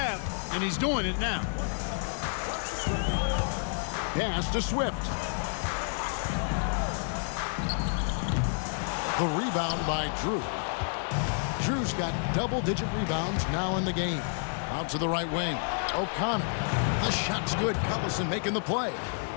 and he's doing it now. Pass to Swift. The rebound by Drew. Drew's got double-digit rebounds now in the game. Out to the right wing. O'Connor. The shot's good. Collison making the play.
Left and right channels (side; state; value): right; silent; 58 dB below the other